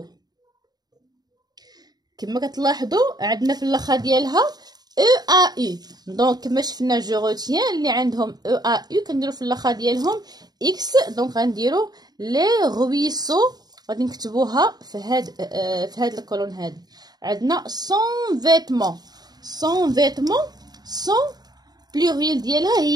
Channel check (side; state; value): left; late; 0.19 ms